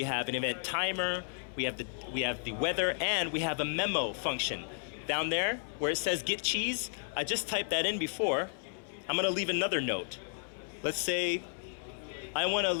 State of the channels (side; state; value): right; silent; 56 dB below the other